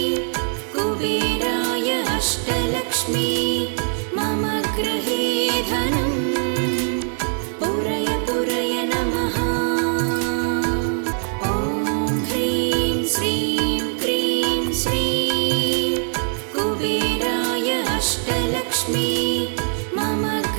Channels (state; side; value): silent; left; 64 dB below the other